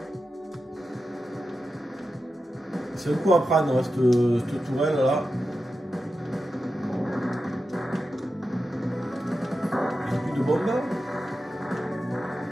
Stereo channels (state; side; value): normal; both; correlation 0.91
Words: C'est un coup à prendre hein, cette tourelle là. Il n'y a plus de bombe.